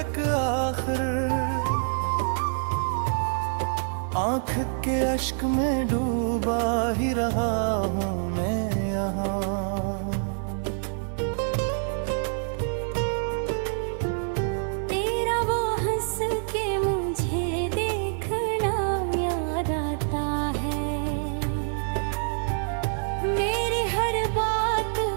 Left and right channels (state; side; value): silent; left; digital silence